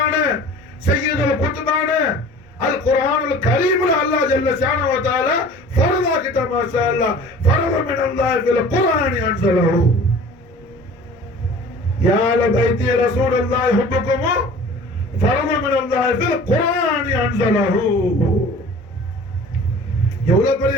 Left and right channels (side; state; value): both; normal; correlation 0.44